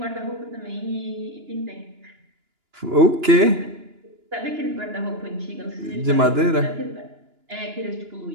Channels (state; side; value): late; left; 2.9 ms